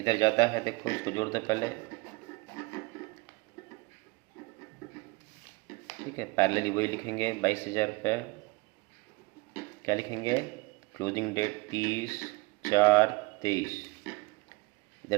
ज़्यादा है, देखो इसको जोड़ दो पहले। ठीक है। पैरेलली वही लिखेंगे 22,000 रुपये। क्या लिखेंगे? Closing date 30/4/23।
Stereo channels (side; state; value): left; quieter; 24.5 dB